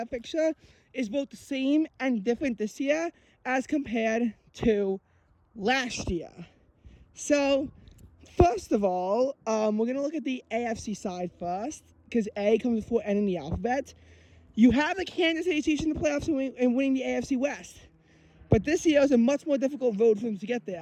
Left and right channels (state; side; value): identical; both; correlation 1.00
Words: picture is both the same and different this year as compared to last year. So, first of all, we're going to look at the AFC side first, because A comes before N in the alphabet. You have the Kansas City Chiefs in the playoffs and winning the AFC West. But this year was a much more difficult road for them to get